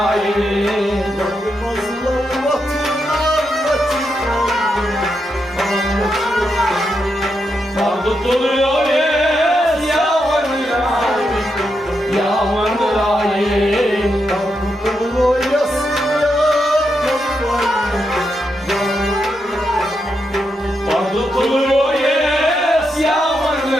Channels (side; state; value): both; normal; correlation 0.84